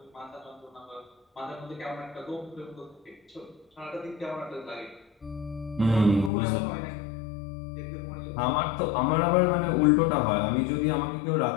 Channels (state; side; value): drops out; right; at 6.3 s